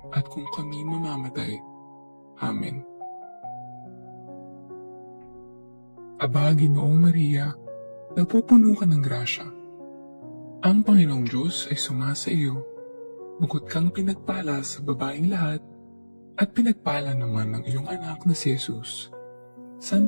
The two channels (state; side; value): inverted; both; correlation -1.00